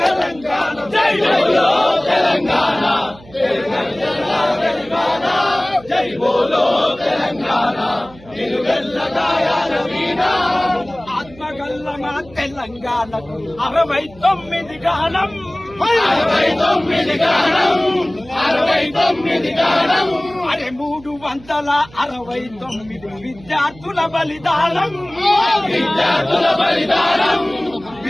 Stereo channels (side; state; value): right; noise; hum, 22 dB below the sound